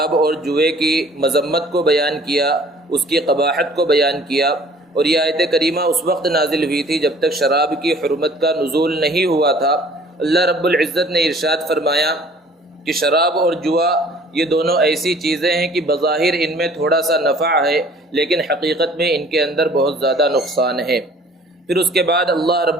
اور جوئے کی مذمت کو بیان کیا، اس کی قباحت کو بیان کیا، اور یہ آیت کریمہ اس وقت نازل ہوئی تھی جب تک شراب کی حرمت کا نزول نہیں ہوا تھا۔ اللہ رب العزت نے ارشاد فرمایا کہ شراب اور جوا یہ دونوں ایسی چیزیں ہیں کہ بظاہر ان میں تھوڑا سا نفع ہے لیکن حقیقت میں ان کے اندر بہت زیادہ نقصان ہے۔ پھر اس کے بعد اللہ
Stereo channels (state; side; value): normal; both; correlation 0.52